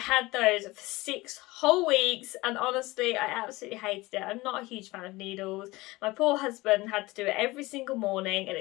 those for 6 whole weeks, and honestly I absolutely hated it. I'm not a huge fan of needles. My poor husband had to do it every single morning at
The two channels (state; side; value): quieter; right; 20.8 dB